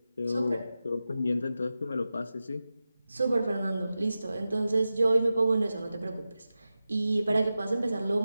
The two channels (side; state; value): both; inverted; correlation -0.93